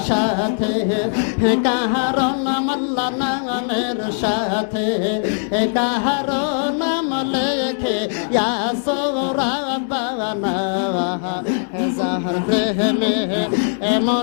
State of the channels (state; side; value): silent; right; digital silence